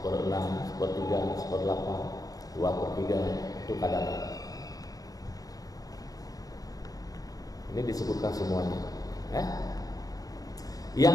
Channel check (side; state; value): right; late; 0.18 ms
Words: 1/3, 1/8, 2/3, itu kadarnya. Ini disebutkan semuanya. Yang